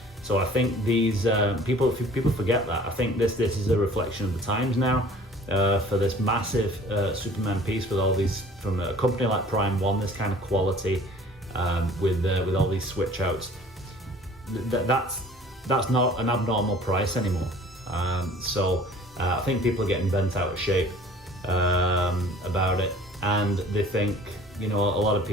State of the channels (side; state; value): both; normal; correlation 0.49